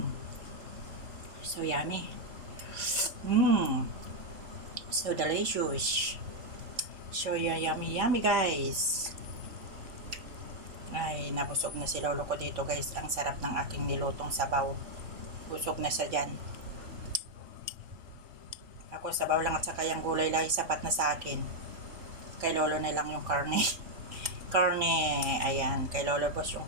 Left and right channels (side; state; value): left; late; 3.6 ms